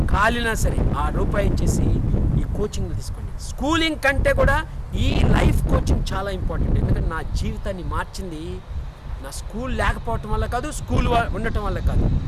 కాలినా సరే ఆ రూపాయి ఇచ్చేసి ఈ కోచింగ్లు తీసుకోండి. స్కూలింగ్ కంటే కూడా ఈ లైఫ్ కోచింగ్ చాలా ఇంపార్టెంట్. ఎందుకంటే నా జీవితాన్ని మార్చింది నా స్కూల్ లేకపోవటం వల్ల కాదు, స్కూల్ ఉండటం వల్ల కాదు,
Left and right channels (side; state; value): both; identical; correlation 1.00